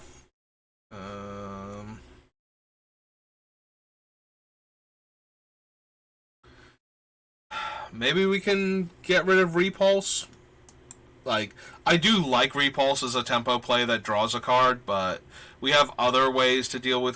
Maybe we can get rid of Repulse. Like, I do like Repulse as a tempo play that draws a card, but we have other ways to deal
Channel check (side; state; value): both; identical; correlation 1.00